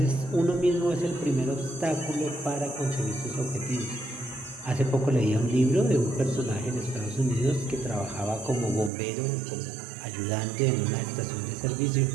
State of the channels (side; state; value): left; drops out; at 8.9 s